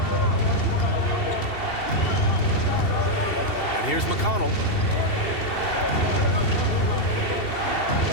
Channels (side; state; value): right; late; 2.7 ms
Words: And here's McConnell.